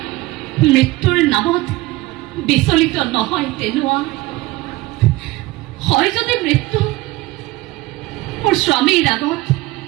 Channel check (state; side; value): quieter; left; 19.6 dB